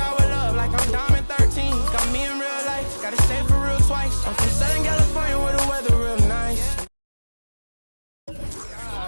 with love, like I'm Diamond 13. Got me in real life, gotta stay for real twice. I'm from Southern California where the weather real nice. I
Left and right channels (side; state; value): both; inverted; correlation -1.00